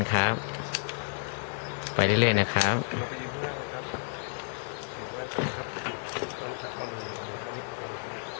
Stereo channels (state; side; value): silent; right; 57 dB below the other